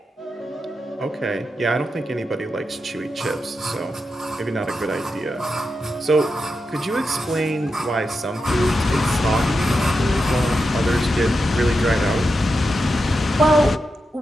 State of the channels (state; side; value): normal; both; correlation 0.88